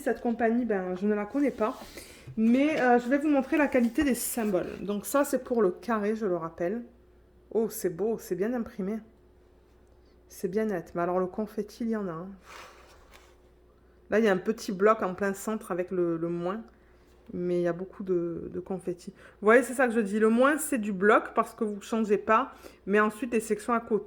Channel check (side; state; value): both; identical; correlation 1.00